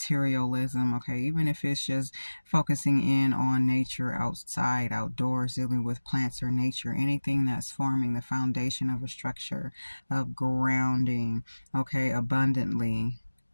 okay, even if it's just focusing in on nature, outside, outdoors, dealing with plants or nature, anything that's forming the foundation of a structure of grounding, okay, abundantly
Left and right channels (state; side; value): inverted; both; correlation -1.00